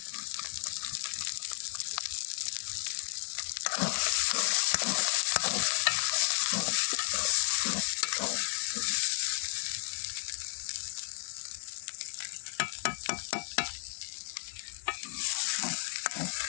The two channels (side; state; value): right; silent; 56 dB below the other